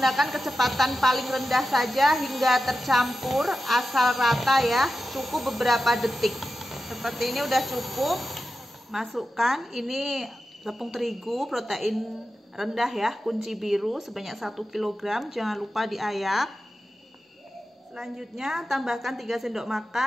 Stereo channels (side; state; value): both; normal; correlation 0.92